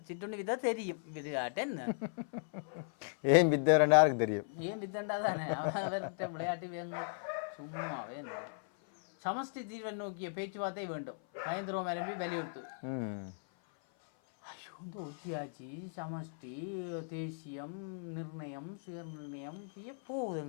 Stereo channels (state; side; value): silent; right; 53 dB below the other